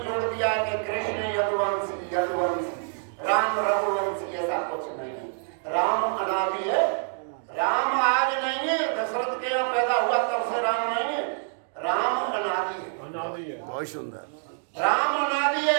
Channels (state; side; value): silent; left; digital silence